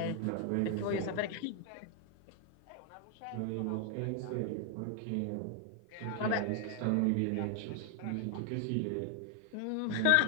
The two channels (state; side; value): different; both; correlation 0.00